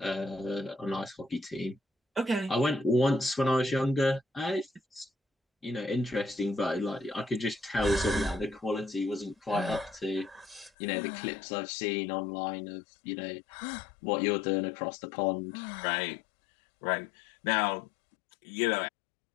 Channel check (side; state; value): right; drops out; at 10.7 s